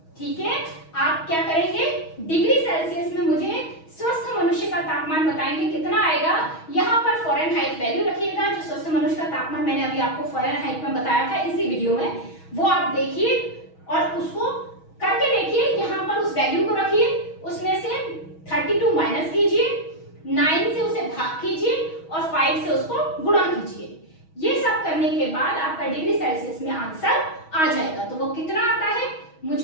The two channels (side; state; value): right; late; 6.3 ms